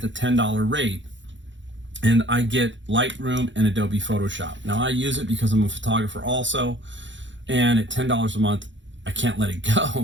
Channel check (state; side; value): late; left; 0.54 ms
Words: $10 rate. And I get Lightroom and Adobe Photoshop. Now, I use it because I'm a photographer also. And at $10 a month, I can't let it